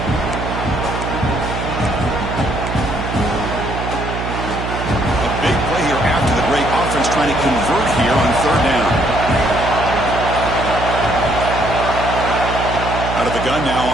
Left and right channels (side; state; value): right; noise; hum, 5 dB below the sound